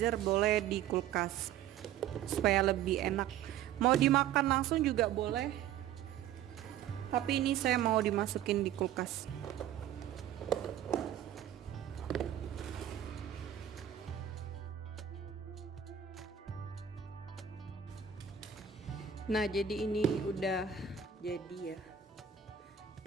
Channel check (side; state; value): left; quieter; 9.7 dB